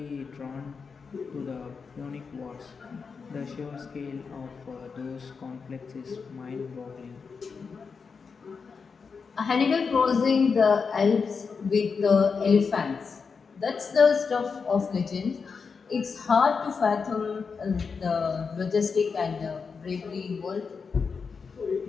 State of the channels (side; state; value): right; quieter; 5.4 dB